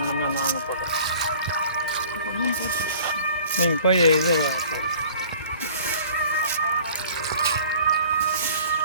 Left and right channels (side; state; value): both; inverted; correlation -0.49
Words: நம்ம நாங்கள் போடுறோம். நீங்கள் போய் இது